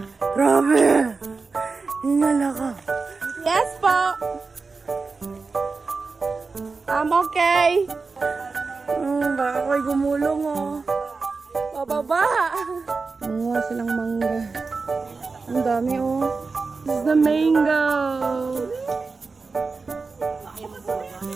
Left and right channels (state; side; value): quieter; left; 4.3 dB